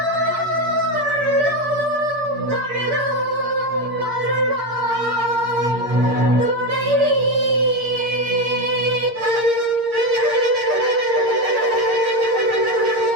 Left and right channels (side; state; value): left; late; 8.6 ms